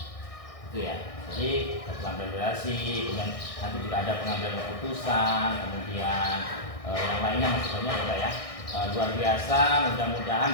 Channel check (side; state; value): right; late; 1.6 ms